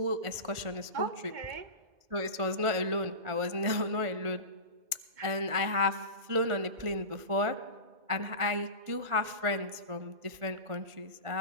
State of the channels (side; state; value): left; late; 1.5 ms